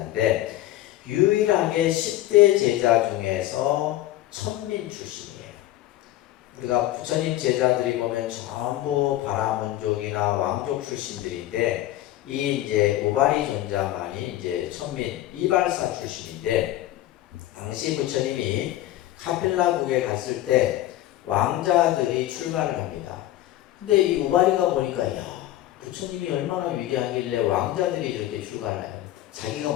유일하게 10대 제자 중에서 천민 출신이에요. 우리가 부처님 제자들이 보면 전부 바라문족이나 왕족 출신들인데 이 이제 우바리 존자만이 이제 천민 이발사 출신인데 당시 부처님이 카필라국에 갔을 때 왕자들이 출가를 합니다. 근데 이 우바리가 보니까 야, 부처님이 얼마나 위대하길래 왕자들이 이렇게 출가를 해요. 자기가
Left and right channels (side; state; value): right; quieter; 14.6 dB